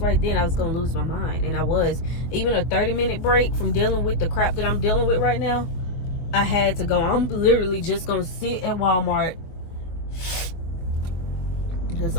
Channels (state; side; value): late; right; 23 ms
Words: then, I was gonna lose my mind, and I was. Even a 30-minute break from dealing with the crap that I'm dealing with right now, I had to go. I'm literally just gonna sit at Walmart. That's